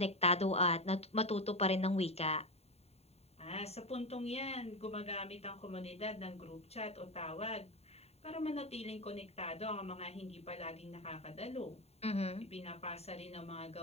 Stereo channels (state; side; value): late; right; 0.30 ms